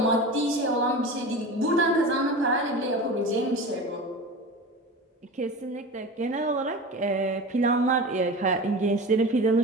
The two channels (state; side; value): normal; both; correlation 0.31